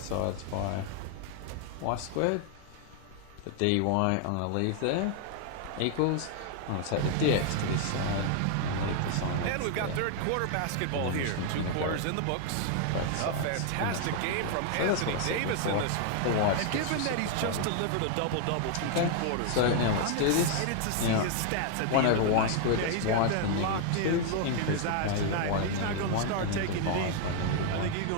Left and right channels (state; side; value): different; both; correlation 0.00